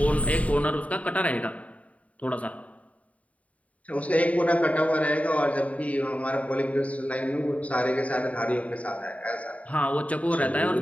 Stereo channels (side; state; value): right; late; 0.068 ms